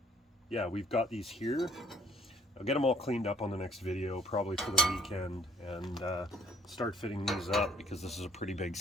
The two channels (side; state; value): both; normal; correlation 0.61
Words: yeah, we've got these here. I'll get them all cleaned up on the next video, probably for the weekend, and start fitting these up, because this is a pretty big